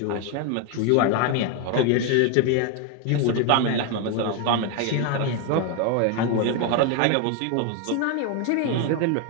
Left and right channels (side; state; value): both; different; correlation 0.01